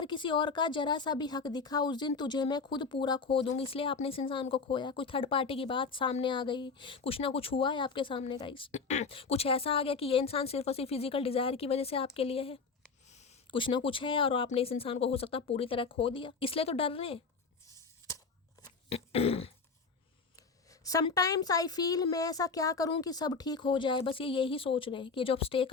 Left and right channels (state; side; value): quieter; right; 4.8 dB